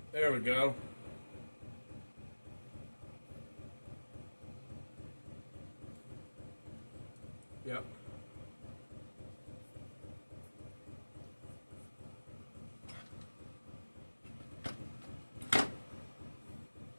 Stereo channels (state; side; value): inverted; both; correlation -1.00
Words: There we go. Yep.